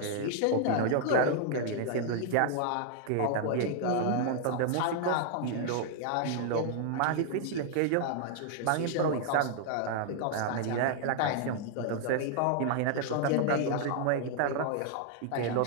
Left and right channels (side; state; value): both; different; correlation 0.00